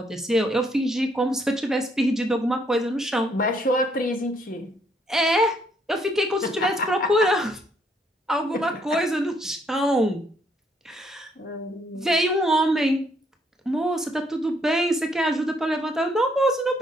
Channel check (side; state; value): both; normal; correlation 0.69